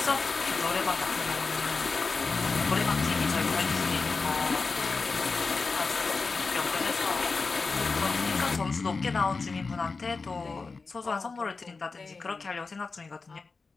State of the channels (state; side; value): quieter; right; 4.2 dB